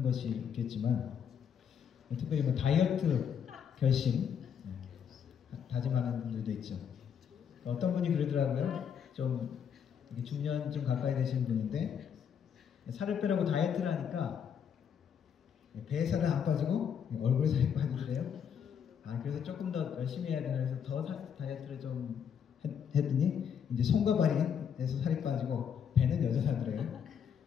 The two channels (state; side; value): quieter; right; 7.8 dB